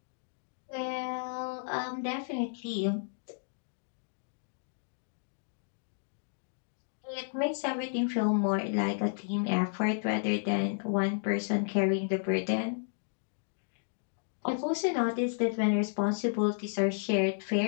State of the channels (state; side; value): silent; right; digital silence